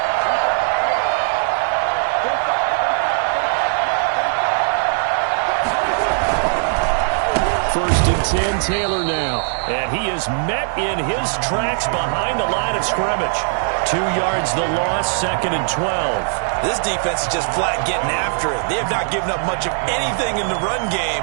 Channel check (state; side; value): silent; left; digital silence